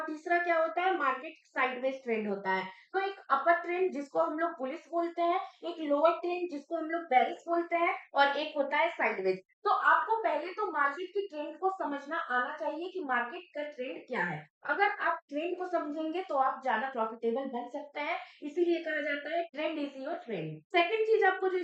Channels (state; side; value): identical; both; correlation 1.00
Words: तीसरा क्या होता है, मार्केट साइडवेज ट्रेंड होता है। तो एक अपर ट्रेंड जिसको हम लोग बुलिश बोलते हैं, एक लोअर ट्रेंड जिसको हम लोग बेरिश बोलते हैं, और एक होता है साइडवेज। तो आपको पहले तो मार्केट की ट्रेंड को समझना आना चाहिए कि मार्केट का ट्रेंड क्या है। अगर आप ट्रेंड को समझेंगे तो आप ज्यादा प्रॉफिटेबल बन सकते हैं, इसीलिए कहा जाता है trend is your trend. Second चीज आपको जो